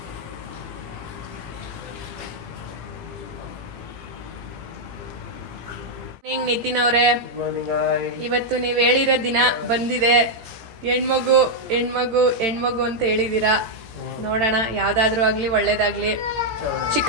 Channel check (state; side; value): late; left; 17 ms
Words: ನಿತಿನ್ ಅವರೇ, ಇವತ್ತು ನೀವ್ ಹೇಳಿರೋ ದಿನ ಬಂದಿದೆ. ಹೆಣ್ಮಗು ಹೆಣ್ಮಗು ಹೆಣ್ಮಗು ಅಂತ ಹೇಳಿದೀರಾ. ನೋಡೋಣ, ಯಾವ್ದಾದ್ರು ಆಗ್ಲಿ ಒಳ್ಳೇದಾಗ್ಲಿ.